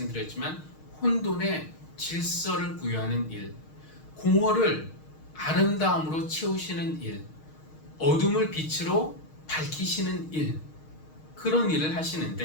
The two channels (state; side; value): late; right; 6.4 ms